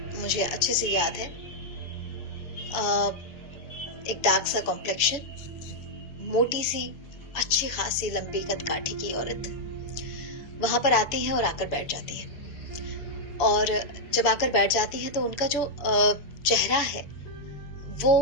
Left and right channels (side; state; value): right; late; 7.0 ms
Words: मुझे अच्छे से याद है। एक डार्क सा कॉम्प्लेक्शन, मोटी सी, अच्छी खासी लंबी कदकाठी की औरत वहां पर आती है और आकर बैठ जाती है। और जब आकर बैठ जाती हैं तो उनका जो चेहरा है